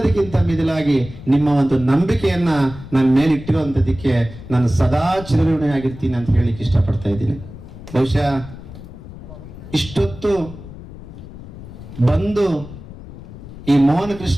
ಮಿಗಿಲಾಗಿ ನಿಮ್ಮ ಒಂದು ನಂಬಿಕೆಯನ್ನ ನನ್ನ ಮೇಲೆ ಇಟ್ಟಿರುವಂತದಕ್ಕೆ ನಾನು ಸದಾ ಚಿರಋಣಿಯಾಗಿರ್ತೀನಿ ಅಂತ ಹೇಳಿಕ್ಕೆ ಇಷ್ಟಪಡ್ತಾ ಇದ್ದೀನಿ. ಬಹುಶಃ ಇಷ್ಟೊತ್ತು ಬಂದು ಈ ಮೋಹನ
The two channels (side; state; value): left; noise; rumble, 15 dB below the sound